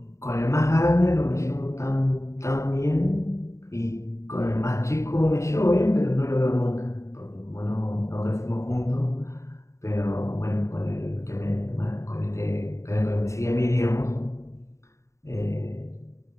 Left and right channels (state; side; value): late; right; 0.14 ms